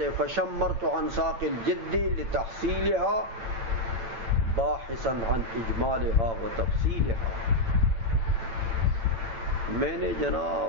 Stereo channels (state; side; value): late; left; 8.9 ms